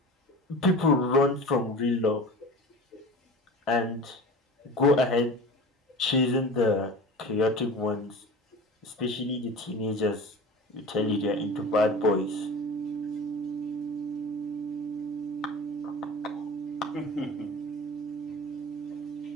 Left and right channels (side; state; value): both; normal; correlation 0.35